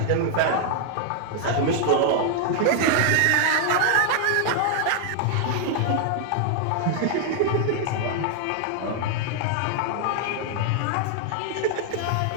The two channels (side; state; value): both; different; correlation 0.00